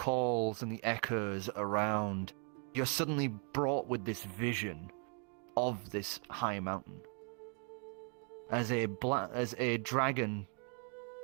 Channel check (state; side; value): quieter; left; 39.7 dB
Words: and the echoes around, you're suddenly brought with this vision of this high mountain. As a dragon